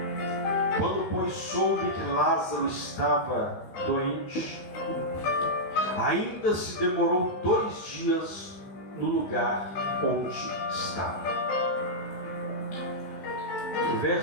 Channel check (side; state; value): right; late; 16 ms